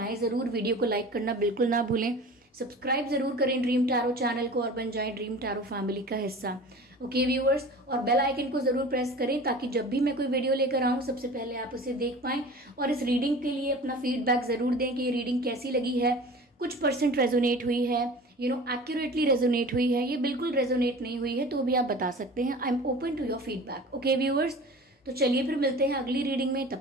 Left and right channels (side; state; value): both; normal; correlation 0.39